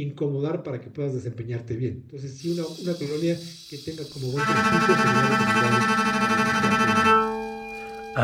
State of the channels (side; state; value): both; identical; correlation 1.00